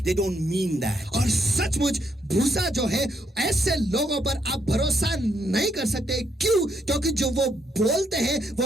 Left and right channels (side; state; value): both; normal; correlation 0.75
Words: they don't mean that. और सचमुच भूसा जो है ऐसे लोगों पर आप भरोसा नहीं कर सकते। क्यों? क्योंकि जो वो बोलते हैं वो